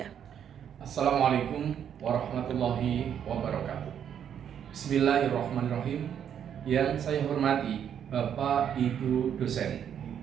Assalamualaikum warahmatullahi wabarakatuh. Bismillahirrahmanirrahim. Yang saya hormati Bapak Ibu dosen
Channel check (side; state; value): left; quieter; 8.9 dB